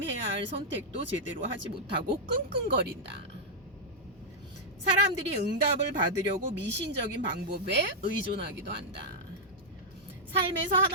해야 할 선택도 제대로 하지 못하고 끙끙거린다. 사람들이 응답을 받으려고 미신적인 방법에 의존하기도 한다. 삶에서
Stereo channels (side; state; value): both; normal; correlation -0.06